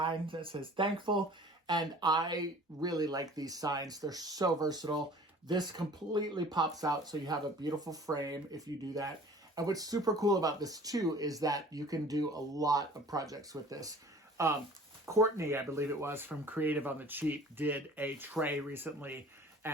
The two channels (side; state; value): both; normal; correlation 0.47